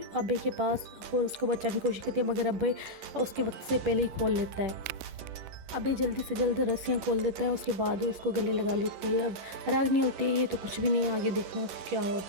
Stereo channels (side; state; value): left; late; 11 ms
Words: अभय के पास और उसको बचाने की कोशिश करती है, मगर अभय उसके वक्त से पहले ही खोल लेता है। अभय जल्दी से जल्द रस्सियाँ खोल देता है, उसके बाद वो उसको गले लगा लेती है। अब रागिनी होती है ये तो कुछ भी नहीं, आगे देखना क्या